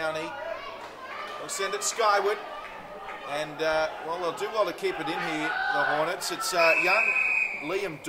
will send it skyward. And, well, they'll do well to keep it in here, the Hornets. It's young Liam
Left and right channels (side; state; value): both; identical; correlation 1.00